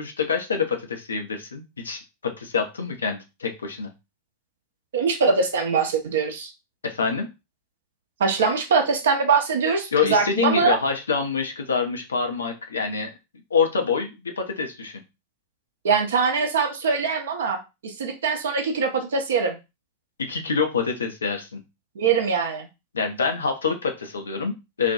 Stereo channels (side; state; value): both; inverted; correlation -0.35